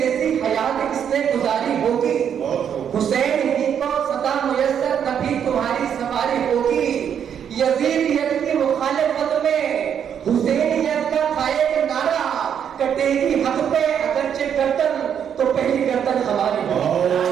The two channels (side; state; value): left; quieter; 8.4 dB